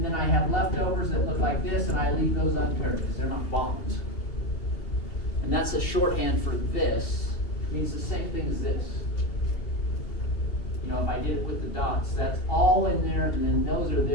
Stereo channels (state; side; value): late; right; 2.7 ms